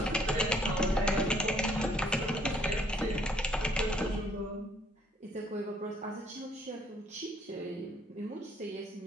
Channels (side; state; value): both; normal; correlation 0.64